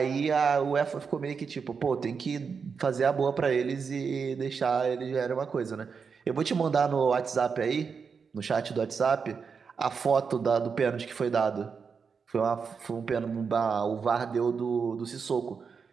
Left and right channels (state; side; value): quieter; left; 5.7 dB